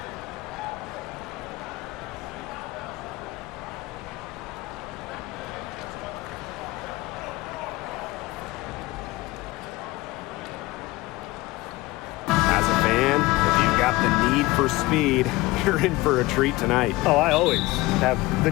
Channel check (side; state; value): right; quieter; 20.3 dB